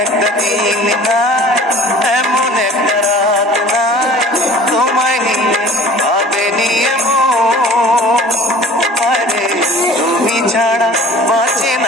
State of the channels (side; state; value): both; normal; correlation 0.47